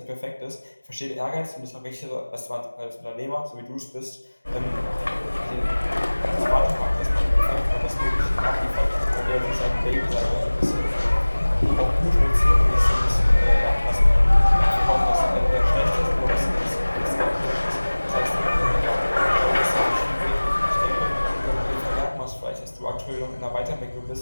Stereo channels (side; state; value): both; inverted; correlation -1.00